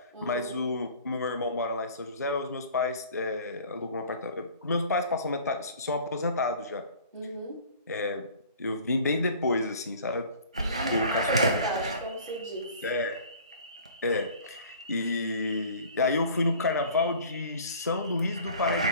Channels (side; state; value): both; inverted; correlation -0.48